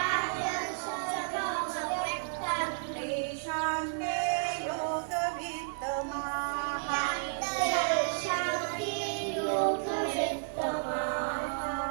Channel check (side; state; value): left; silent; 56 dB below the other